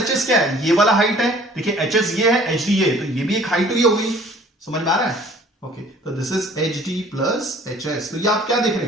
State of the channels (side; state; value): both; normal; correlation 0.53